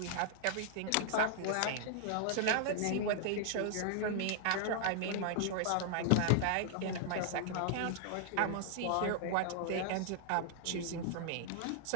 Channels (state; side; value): different; both; correlation -0.01